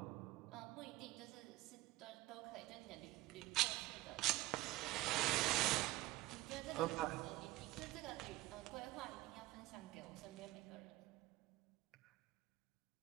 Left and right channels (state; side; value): quieter; left; 18.1 dB